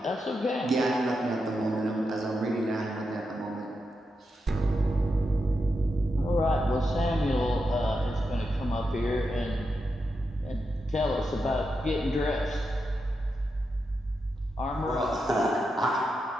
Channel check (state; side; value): normal; both; correlation 0.86